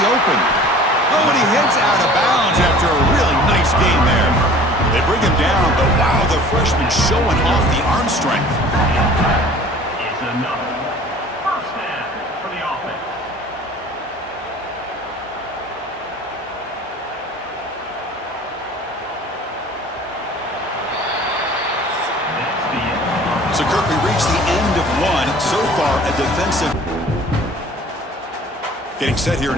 the open. Oh, and he heads out of bounds after a really nice gain there. They bring him down, but wow, the freshman showing off the arm strength. It's another 1st down for the offense. So, Kirk, we reached the end of 1. So far, a defensive. Getting set here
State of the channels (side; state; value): both; normal; correlation 0.47